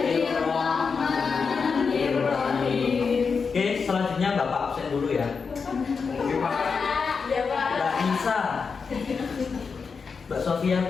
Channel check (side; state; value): right; quieter; 5.4 dB